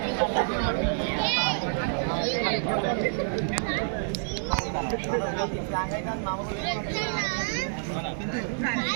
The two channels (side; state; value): left; silent; 59 dB below the other